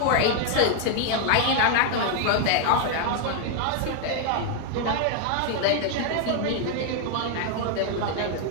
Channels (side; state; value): both; different; correlation 0.00